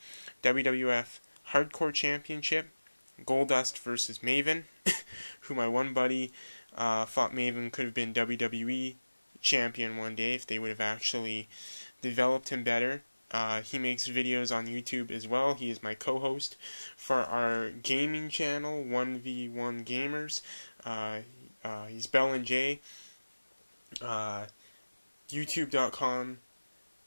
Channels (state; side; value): inverted; both; correlation -1.00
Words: WWF Hardcore Championship, Goldust versus Maven, who my one buddy thought Maven could have been WWE champion one day if they would have actually developed him better. He makes videos on YouTube as well. He is my co-host for our gaming channel, 1v1 Gamers. He's Bell and Jay.